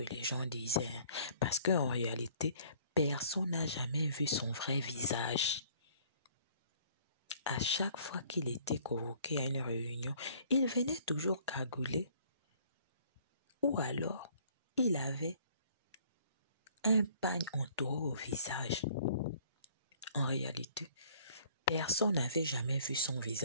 les gens disaient. Parce qu'en réalité, personne n'a jamais vu son vrai visage. À chaque fois qu'il était convoqué à une réunion, il venait toujours cagoulé. Ou alors, il avait un pagne entouré au visage. En réalité, personne n'avait jamais vu son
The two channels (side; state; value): both; inverted; correlation -0.57